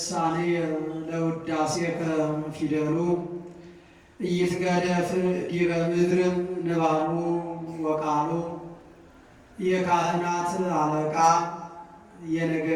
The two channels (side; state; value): both; identical; correlation 1.00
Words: ለውዳሴከ ፊደሉ ኢይትገደፍ ዲበ ምድር ንባቡ ወቃሉ። የካህናት አለቃ